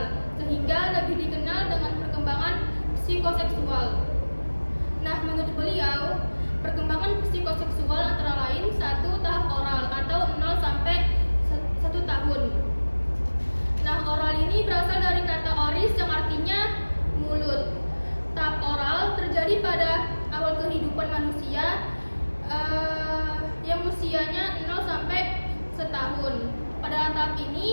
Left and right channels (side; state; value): both; inverted; correlation -1.00